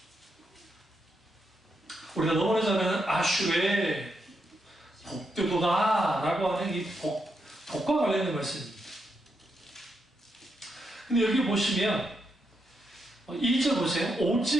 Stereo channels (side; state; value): both; normal; correlation 0.82